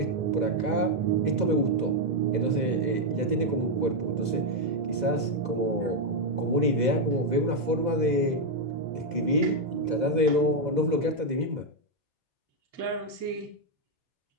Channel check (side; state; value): left; late; 2.0 ms